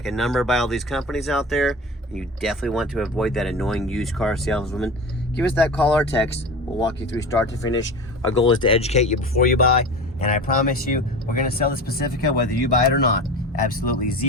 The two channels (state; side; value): normal; both; correlation 0.32